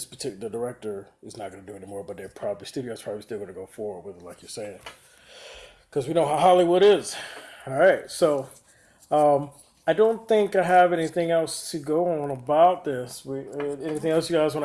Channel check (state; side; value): identical; both; correlation 1.00